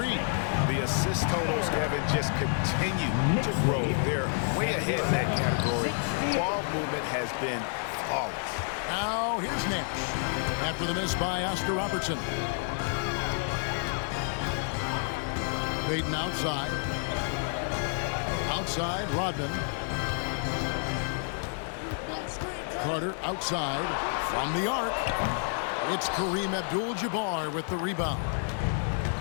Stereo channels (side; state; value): right; silent; 58 dB below the other